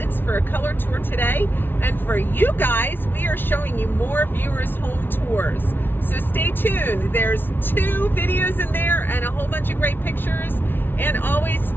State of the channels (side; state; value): right; late; 0.10 ms